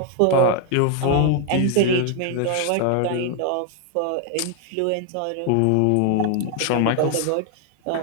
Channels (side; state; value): both; different; correlation 0.00